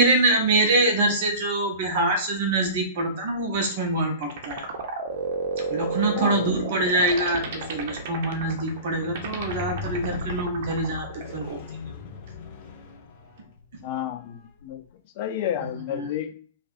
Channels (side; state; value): both; inverted; correlation -0.35